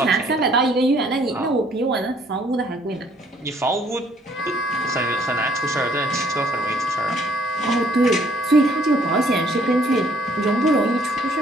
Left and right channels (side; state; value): both; normal; correlation 0.63